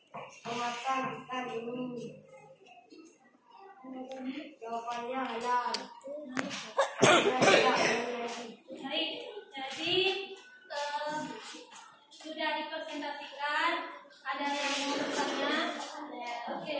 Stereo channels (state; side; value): identical; both; correlation 1.00